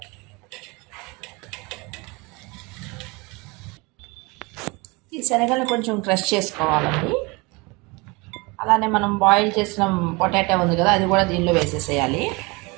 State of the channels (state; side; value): quieter; left; 26.5 dB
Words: ఈ శనగలను కొంచెం క్రష్ చేసుకోవాలండి. అలానే మనం బాయిల్ చేసిన పొటాటో ఉంది కదా, అది కూడా దీనిలో వేసేసేయాలి.